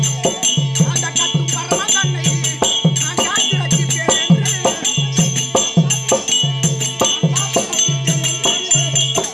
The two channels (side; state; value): both; identical; correlation 1.00